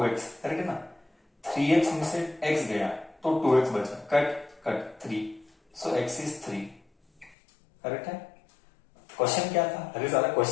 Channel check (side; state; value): right; drops out; at 7.4 s